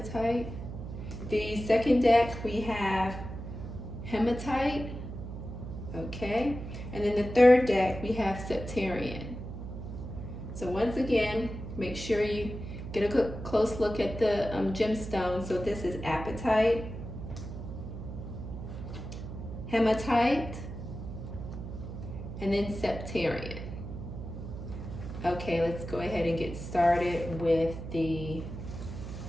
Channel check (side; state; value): right; noise; hum, 9 dB below the sound